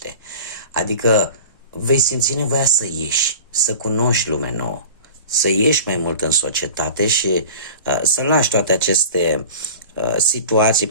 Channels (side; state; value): both; inverted; correlation -0.39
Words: Adică vei simți nevoia să ieși, să cunoști lume nouă, să ieși mai mult în societate și să lași toate aceste situații,